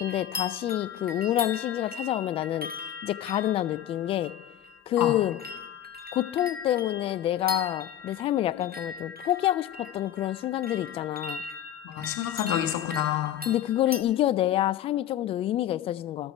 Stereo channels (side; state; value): right; quieter; 11.5 dB